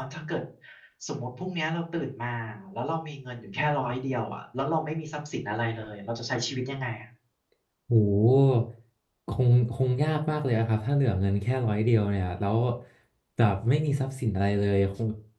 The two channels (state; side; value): identical; both; correlation 1.00